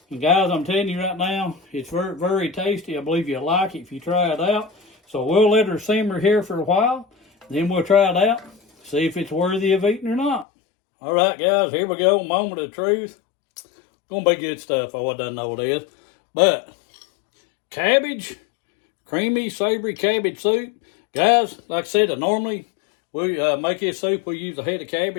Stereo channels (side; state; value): right; drops out; at 10.5 s